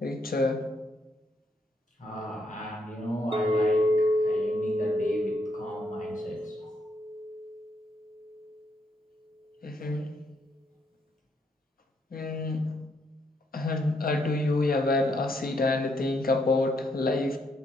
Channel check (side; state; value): both; normal; correlation 0.75